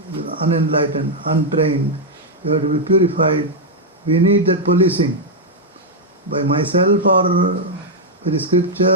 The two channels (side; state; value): both; normal; correlation -0.03